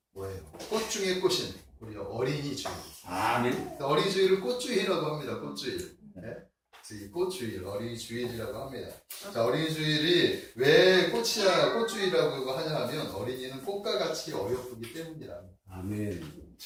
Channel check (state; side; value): identical; both; correlation 1.00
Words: 뭐예요? 꽃 중에 꽃인 우리 어린이 주일. 아멘. 어린이 주일을 꽃주일이라고 합니다. 꽃주일. 네? 그래서 이 꽃주일, 어린이 주일이라고 합니다. 자, 어린이 주일이 왜 꽃주일이라고 하냐 하면 어린이는 꽃과 같이 어여쁘기 때문이라. 아멘.